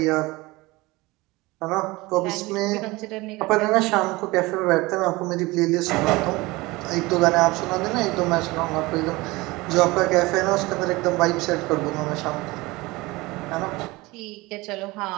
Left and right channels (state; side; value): quieter; left; 21.8 dB